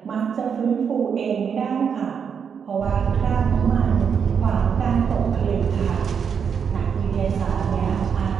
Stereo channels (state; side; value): quieter; left; 6.9 dB